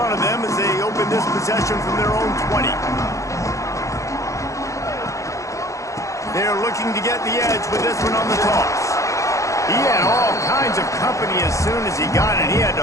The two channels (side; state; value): right; late; 0.15 ms